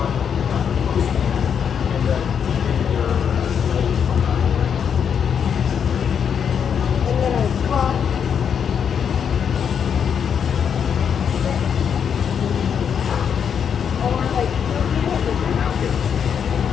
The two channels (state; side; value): quieter; right; 7.6 dB